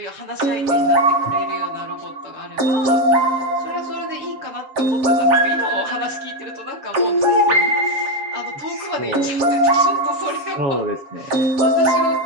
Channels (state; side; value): late; left; 7.4 ms